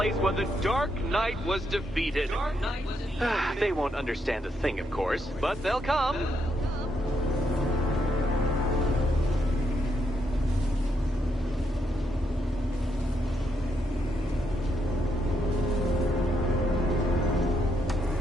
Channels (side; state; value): both; normal; correlation 0.78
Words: where the Dark Knight was defeated. They won't understand a thing, of course, but they'll come.